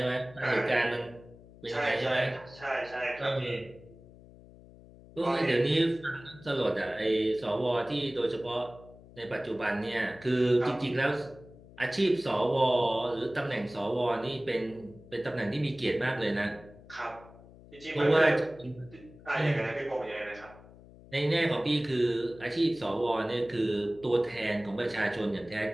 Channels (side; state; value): left; noise; hum, 21 dB below the sound